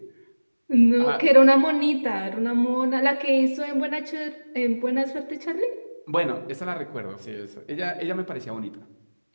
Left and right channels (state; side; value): inverted; both; correlation -1.00